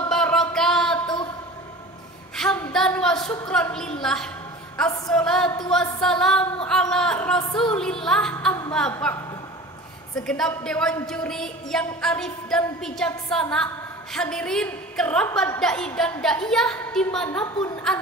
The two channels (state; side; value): normal; both; correlation 0.38